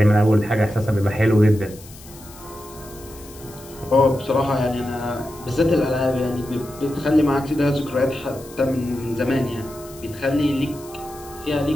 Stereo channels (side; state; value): left; noise; hiss, 20 dB below the sound